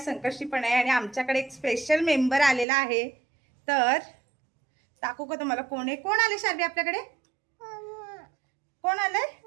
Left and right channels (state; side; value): drops out; left; at 2.7 s